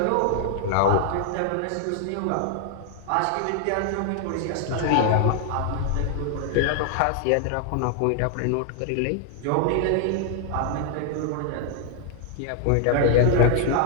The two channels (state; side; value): different; both; correlation 0.00